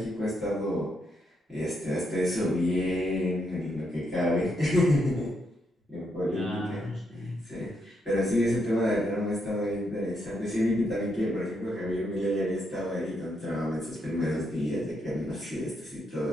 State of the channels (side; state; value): both; normal; correlation 0.79